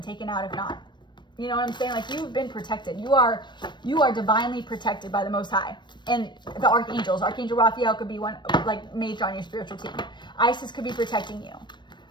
taken out if not. You know what I'm saying? Like, you've been protected. You are divinely protected by the Most High. And the archangels. Archangel Raphael could be one, like, major on your spiritual team. Isis could be protecting you.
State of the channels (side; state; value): right; late; 0.22 ms